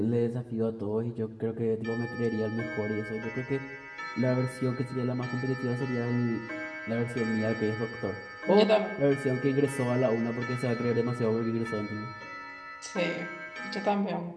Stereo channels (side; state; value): both; identical; correlation 1.00